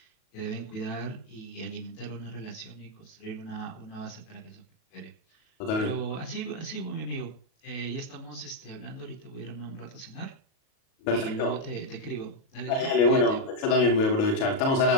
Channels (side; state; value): right; late; 37 ms